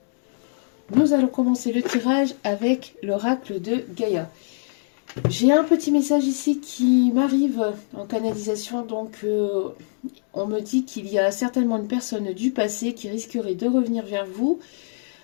Nous allons commencer le tirage avec l'oracle de Gaïa. J'ai un petit message ici qui m'arrive en canalisation, donc on me dit qu'il y a certainement une personne du passé qui risquerait de revenir vers vous,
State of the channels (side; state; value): right; silent; digital silence